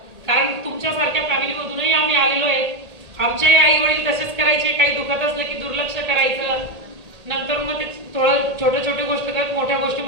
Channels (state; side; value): late; left; 1.8 ms